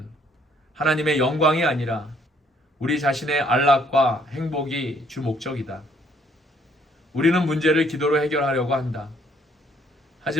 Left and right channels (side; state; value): both; normal; correlation 0.65